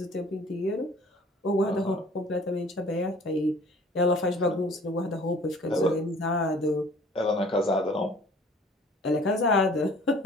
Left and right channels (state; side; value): normal; both; correlation 0.51